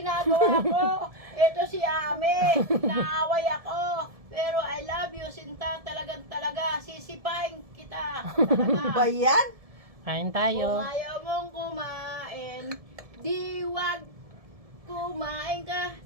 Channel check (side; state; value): left; late; 1.7 ms